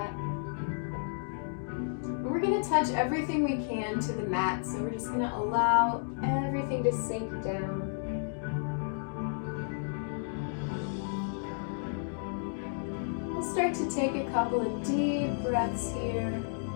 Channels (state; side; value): silent; right; digital silence